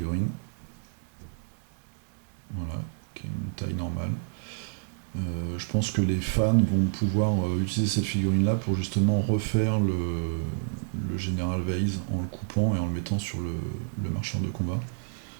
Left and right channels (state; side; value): silent; left; 59 dB below the other